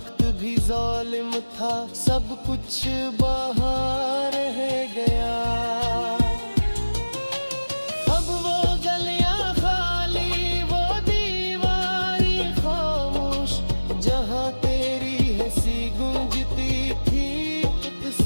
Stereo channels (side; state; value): both; inverted; correlation -1.00